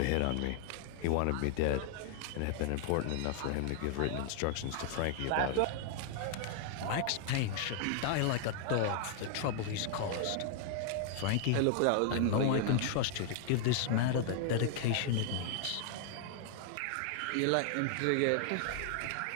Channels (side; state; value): both; different; correlation 0.00